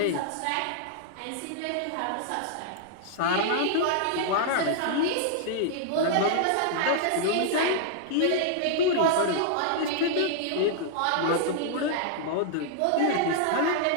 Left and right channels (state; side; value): different; both; correlation -0.01